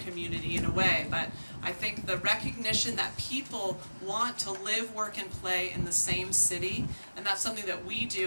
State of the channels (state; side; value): inverted; both; correlation -1.00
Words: in a way, but I think the recognition that people want to live, work, and play in the same city, and that's something that we